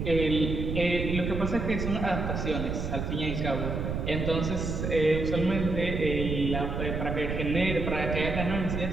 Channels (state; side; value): noise; right; rumble, 3 dB below the sound